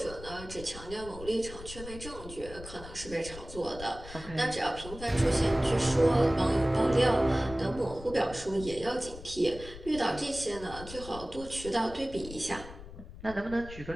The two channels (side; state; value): left; noise; rumble, 14 dB below the sound